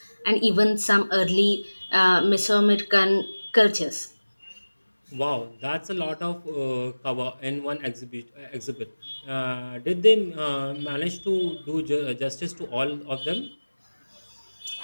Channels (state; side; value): inverted; both; correlation -1.00